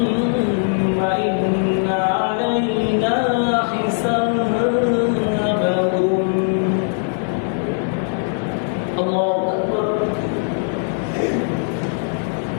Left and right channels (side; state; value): right; silent; digital silence